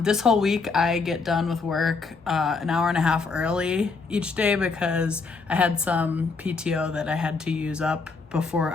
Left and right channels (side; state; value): right; quieter; 4.4 dB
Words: this whole week I get done with work an hour and a half early each day because I had some PTO that I had to use up before